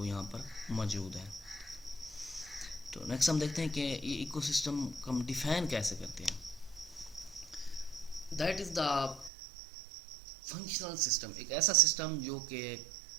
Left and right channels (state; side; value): drops out; left; at 9.3 s